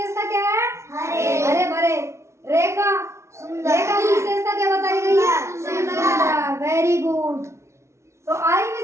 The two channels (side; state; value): left; late; 0.13 ms